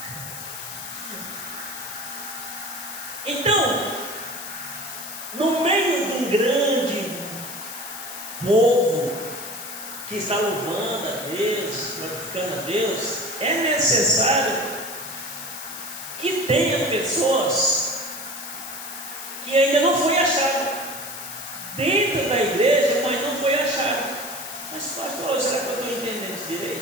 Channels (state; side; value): noise; left; hiss, 10 dB below the sound